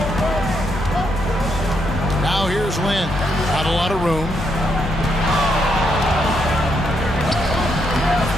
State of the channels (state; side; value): noise; left; hum, 8 dB below the sound